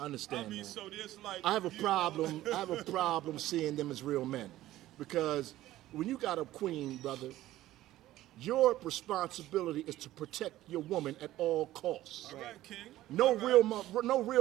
understand I mean, that. so there's like... I have a you know- problem. I have a problem seeing them as real men, because when you got a queen, brother, your responsibility is to protect your woman at all costs. All right, King. No All right. no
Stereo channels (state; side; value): quieter; left; 15.0 dB